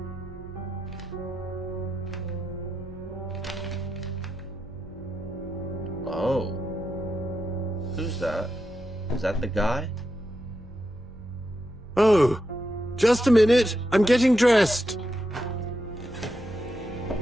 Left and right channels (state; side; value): normal; both; correlation 0.86